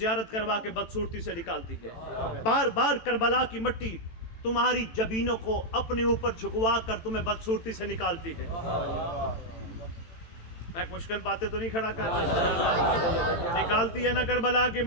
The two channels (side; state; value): right; late; 18 ms